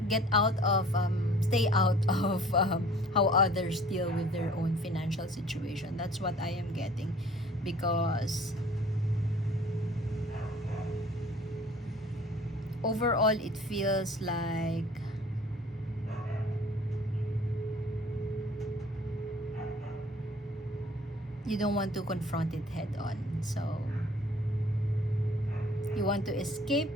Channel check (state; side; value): normal; both; correlation 0.51